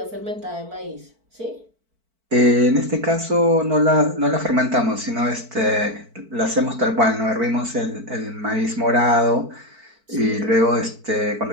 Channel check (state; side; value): late; left; 4.5 ms